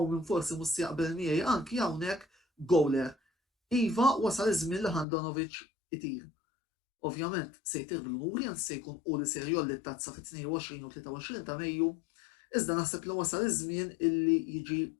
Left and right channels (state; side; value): drops out; right; at 5.1 s